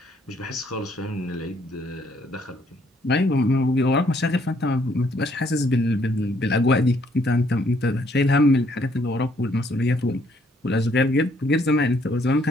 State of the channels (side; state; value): both; normal; correlation 0.67